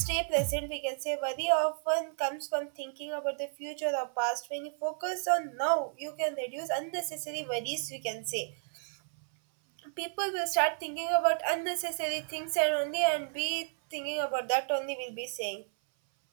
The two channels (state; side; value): silent; left; 56 dB below the other